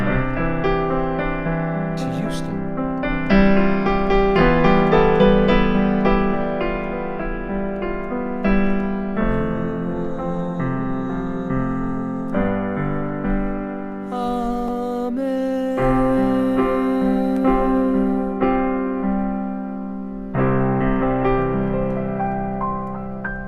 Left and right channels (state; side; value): identical; both; correlation 1.00